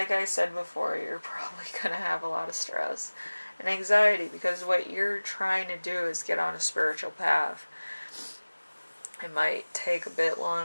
I said before, you're probably going to have a lot of stress and anxiety because what you're trying to do is get on a spiritual path. It might take a bit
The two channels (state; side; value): inverted; both; correlation -1.00